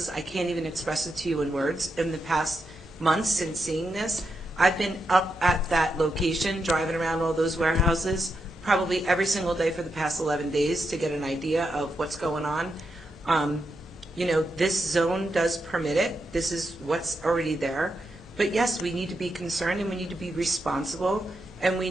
I can't even express it to you in words, in the past months since seeing this. I've been up at that location, driving around all those warehouses, probably every single day for the past 11 days to get an idea of what's going on. You know, this zone does permit it. This is what's already there. But yes, we need to be concerned and we need to be responsible and we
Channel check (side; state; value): both; normal; correlation 0.84